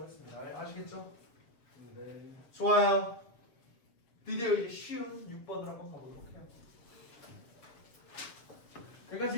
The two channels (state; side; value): late; right; 7.0 ms